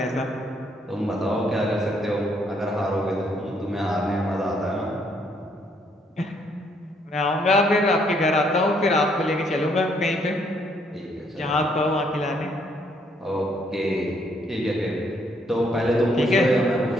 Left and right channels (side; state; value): both; normal; correlation 0.69